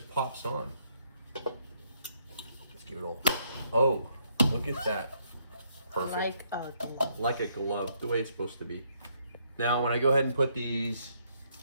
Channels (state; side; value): inverted; both; correlation -0.72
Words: on. Let's give it all. Oh, look at that. Perfect. Like a glove. Like a glove, the way it's supposed to be. Now, when I go ahead and put these